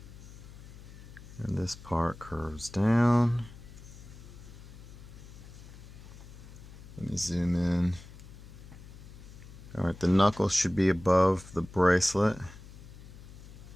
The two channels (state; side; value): noise; left; hum, 17 dB below the sound